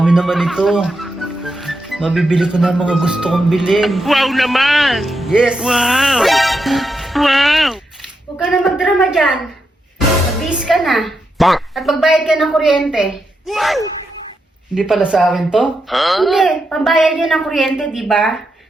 naman ito. Mabibili ko na ang mga gusto kong bilhin. Wow naman! Yes! Wow! Wow! Huwag ka na magdrama dyan. Mag-bis ka na. Bang! At magbayad ka ng kuryente. Hindi pala sa akin to? Hindi, pambayad yun ng kuryente, di ba?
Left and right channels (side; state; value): both; normal; correlation 0.84